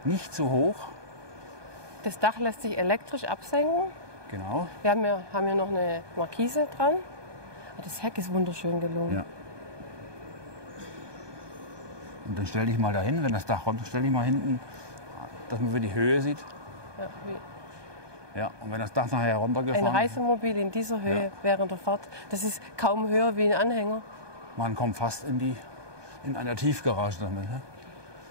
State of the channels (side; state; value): left; late; 1.2 ms